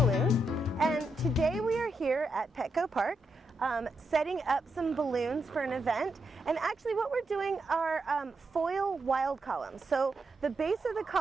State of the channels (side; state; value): both; normal; correlation 0.83